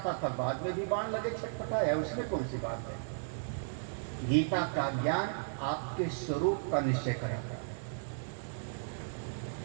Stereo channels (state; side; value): silent; left; digital silence